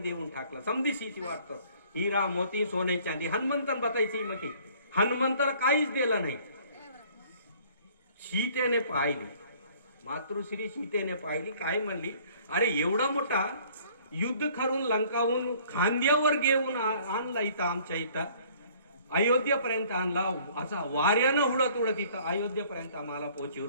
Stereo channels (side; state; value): both; inverted; correlation -0.56